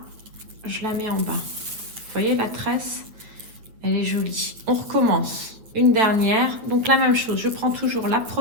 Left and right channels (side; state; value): left; late; 8.7 ms